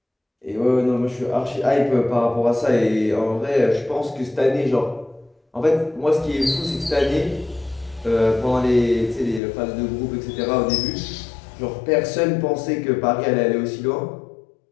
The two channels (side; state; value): right; drops out; at 9.4 s